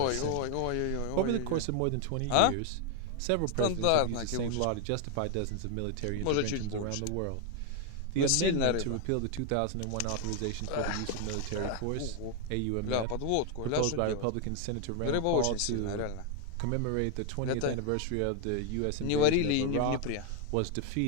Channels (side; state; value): both; different; correlation 0.01